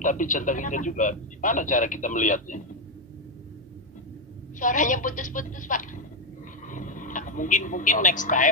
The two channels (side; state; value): both; normal; correlation 0.05